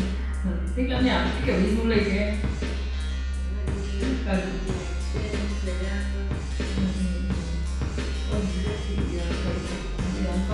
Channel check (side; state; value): both; identical; correlation 1.00